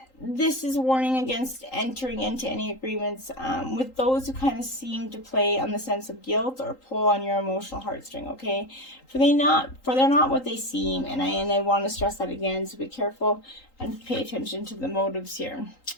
This is warning against entering into any agreements with those who kind of seem to play on the sense of guilt or pull on your emotional heartstring, okay? For they're not what they seem, and I want to stress that again, so be careful and pay attention to the motives here.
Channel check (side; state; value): right; late; 3.8 ms